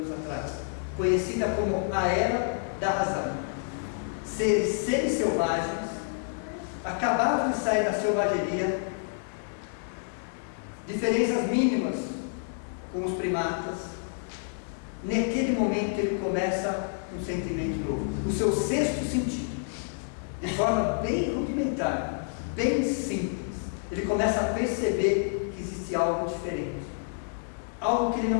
atrás, conhecida como a Era da Razão. Seres semi-selvagens acabavam de sair da selvageria, diferenças mínimas com os primatas. Naquele momento ele começa um sentimento novo, o seu sexto sentido, de forma bem rudimentar, bem simples. Ele começa a perceber que existe algo diferente, algo que ele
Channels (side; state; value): right; silent; 59 dB below the other